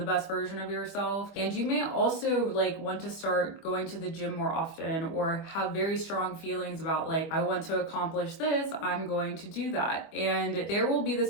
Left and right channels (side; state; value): right; late; 25 ms